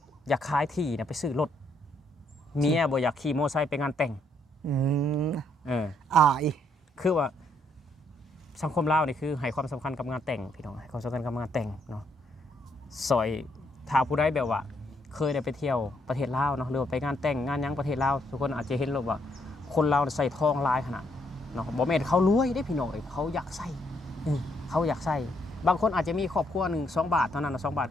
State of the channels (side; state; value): both; normal; correlation 0.73